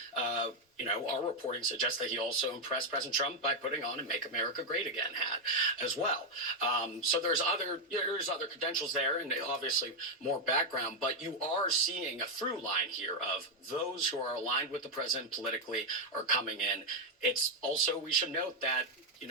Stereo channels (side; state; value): both; normal; correlation 0.03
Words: our reporting suggests that he also impressed President Trump by putting on a "Make America Great Again" hat as well. So there's other credentials there, and obviously more background. But you are seeing a through line here of those who are aligned with the president politically are coming in. It's also, we should note that,